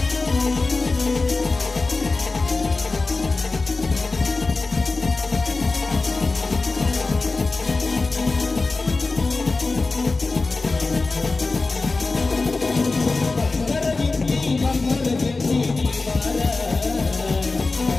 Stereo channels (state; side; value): quieter; right; 3.6 dB